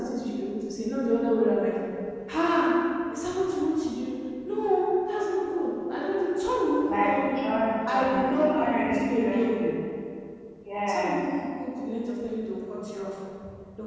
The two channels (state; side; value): identical; both; correlation 1.00